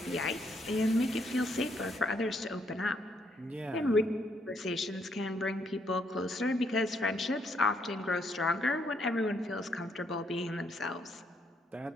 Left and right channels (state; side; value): normal; both; correlation 0.73